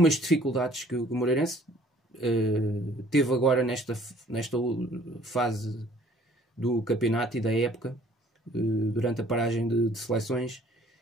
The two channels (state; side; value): normal; both; correlation 0.56